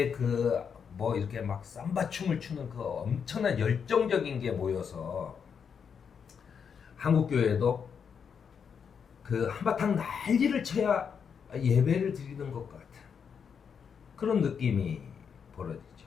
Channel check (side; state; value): right; quieter; 6.8 dB